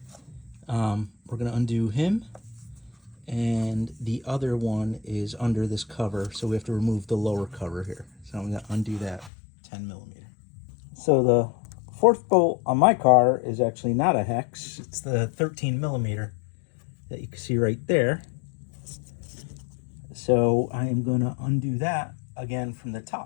We're gonna undo him, and the other one is under this cover, so we have to remove the lower cover here. So I'm gonna undo that 10mm. So the 4th bolt on my car is actually not a hex, it's the 13mm that you can see right there. So I am going to undo that again from the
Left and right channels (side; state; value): right; drops out; at 9.3 s